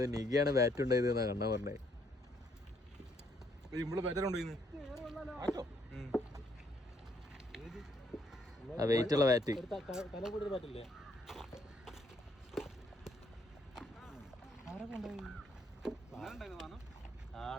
നിഗിയാണ് ബാറ്റ് ഉണ്ടായത് എന്നാ കണ്ണ പറഞ്ഞേ. ആ വെയിറ്റ് ഉള്ള ബാറ്റ്.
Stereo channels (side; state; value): both; normal; correlation 0.70